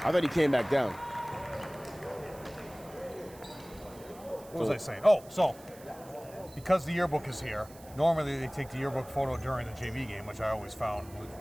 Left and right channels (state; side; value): noise; right; hiss, 22 dB below the sound